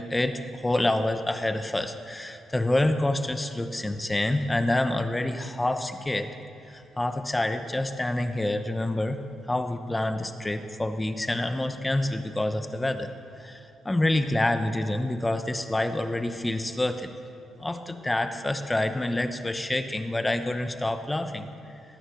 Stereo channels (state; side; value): normal; both; correlation 0.96